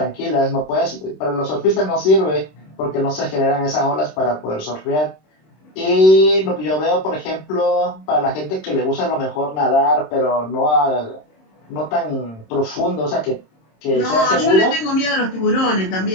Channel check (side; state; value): right; late; 26 ms